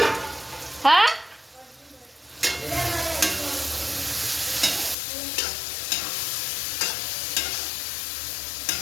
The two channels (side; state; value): right; drops out; at 5.0 s